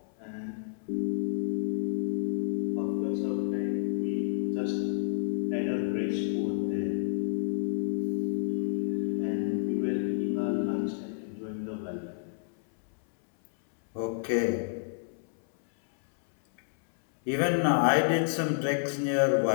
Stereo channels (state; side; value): silent; right; 58 dB below the other